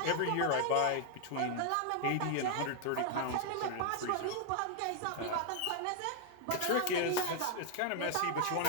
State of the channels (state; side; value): different; both; correlation 0.00